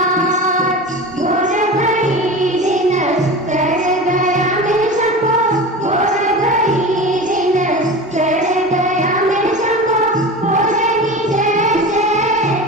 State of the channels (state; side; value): normal; both; correlation 0.30